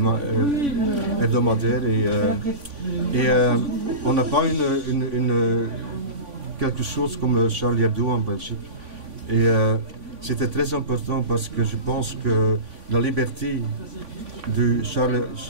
hebdomadaires, et on n'a pas quelque chose comme Charlie Hebdo en Belgique. Et c'était très important parce que je pense que la liberté de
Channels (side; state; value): left; late; 3.5 ms